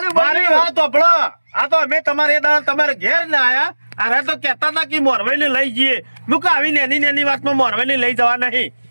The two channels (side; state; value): both; inverted; correlation -1.00